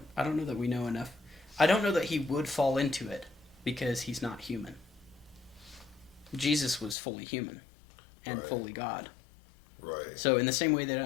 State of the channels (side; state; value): right; drops out; at 7.0 s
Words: I don't know that we know enough. I don't know that he would fall into it because he's not human. Jesus was fully human and fully God. Right. So in the same way that